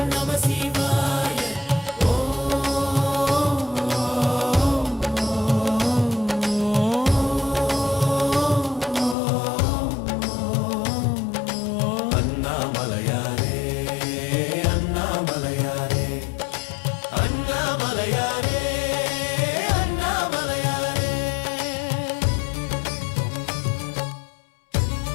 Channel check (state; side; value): drops out; right; at 9.2 s